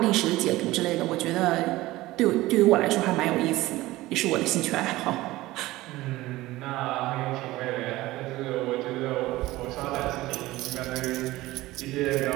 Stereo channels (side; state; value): left; quieter; 18.0 dB